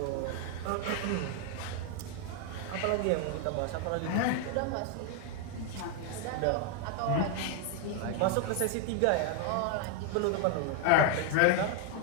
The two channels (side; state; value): both; different; correlation 0.00